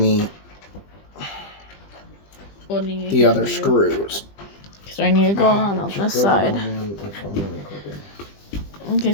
the other screws. So I need to go on this side. Okay,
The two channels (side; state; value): right; late; 20 ms